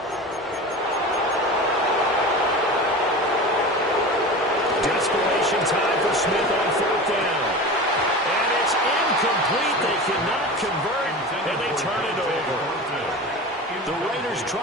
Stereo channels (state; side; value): normal; both; correlation 0.31